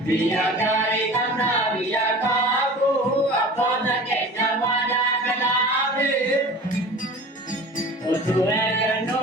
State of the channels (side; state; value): both; normal; correlation 0.39